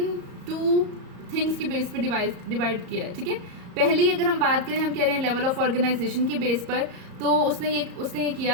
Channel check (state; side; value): late; left; 34 ms